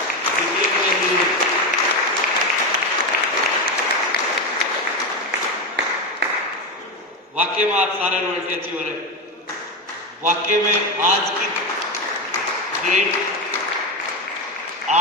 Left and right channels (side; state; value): both; normal; correlation 0.14